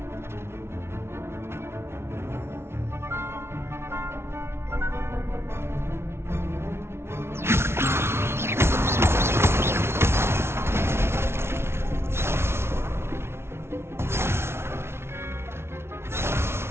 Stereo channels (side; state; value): left; late; 0.12 ms